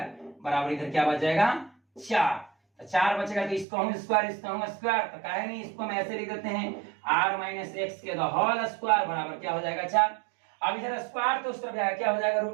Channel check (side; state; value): left; drops out; at 3.7 s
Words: बराबर इधर क्या बच जाएगा 4। तो 4 बचेगा तो इसको हम स्क्वायर, इसको हम स्क्वायर, तो काहे नहीं इसको हम ऐसे लिख देते हैं r-x के होल स्क्वायर बराबर क्या हो जाएगा 4। अब इधर स्क्वायर तो उस तरफ जाएगा क्या हो जाएगा